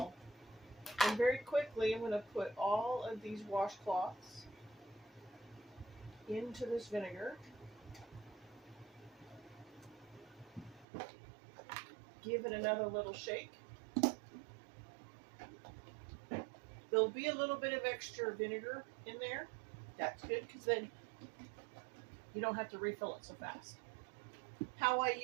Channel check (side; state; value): left; drops out; at 10.9 s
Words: And very quickly, I'm going to put all of these washcloths into this vinegar. Give it another little shake. There'll be a little bit of extra vinegar in there. That's good because then you don't have to refill it so fast. How I